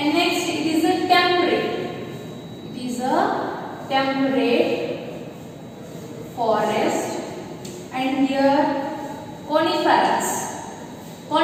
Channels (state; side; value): identical; both; correlation 1.00